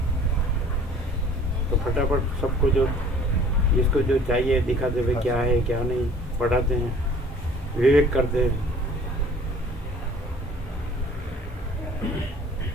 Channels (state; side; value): normal; both; correlation 0.51